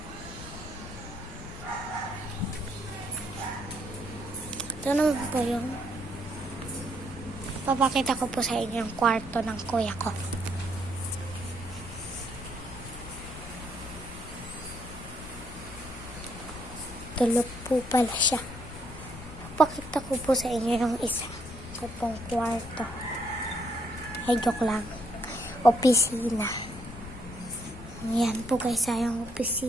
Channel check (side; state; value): left; noise; rumble, 13 dB below the sound